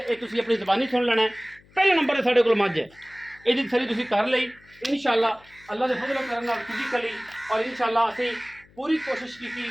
ये तुसीं अपनी ज़बानी सुन लेना है। पहले नंबर ते साडे कोल मझ है, इहदी तसल्ली तुसीं कर लई इंशाअल्लाह अल्लाह दे फजलो करम नाल फिजिकली और इंशाअल्लाह असीं पूरी कोशिश की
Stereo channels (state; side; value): noise; left; hum, 28 dB below the sound